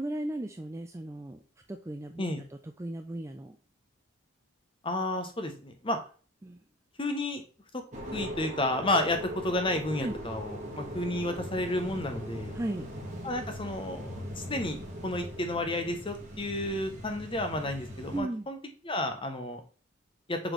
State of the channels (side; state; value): both; normal; correlation 0.38